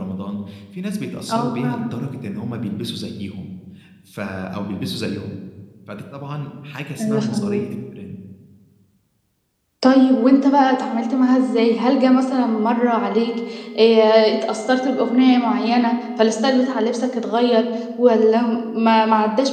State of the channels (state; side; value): identical; both; correlation 1.00